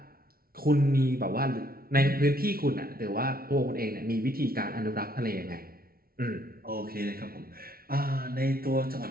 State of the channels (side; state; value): left; late; 0.43 ms